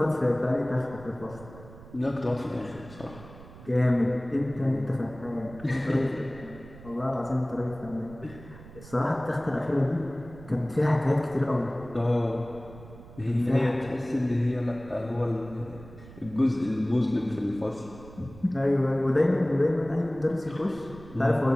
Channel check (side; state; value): right; noise; rumble, 18 dB below the sound